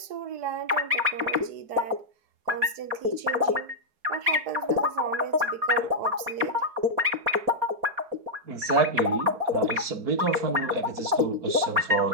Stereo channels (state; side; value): late; left; 4.8 ms